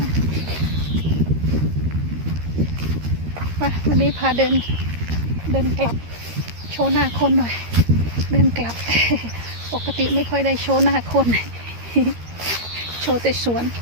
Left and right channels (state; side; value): late; left; 13 ms